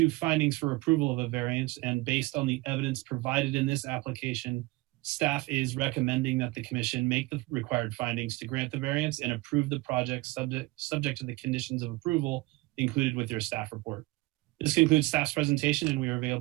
findings for approval of a variance, and based on the evidence provided in this application, staff is recommending that the commission make the required findings to grant the variance and approve the project subject to the conditions of approval included with your staff report. This concludes staff's presentation, and we are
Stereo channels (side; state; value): left; quieter; 22.1 dB